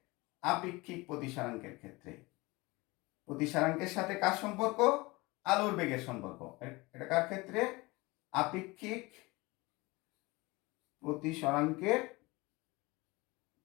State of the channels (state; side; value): quieter; right; 23.0 dB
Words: আপেক্ষিক প্রতিসরাঙ্কের ক্ষেত্রে। প্রতিসরাঙ্কের সাথে কার সম্পর্ক? আলোর বেগের সম্পর্ক। এটা কার ক্ষেত্রে? আপেক্ষিক প্রতিসরাঙ্কের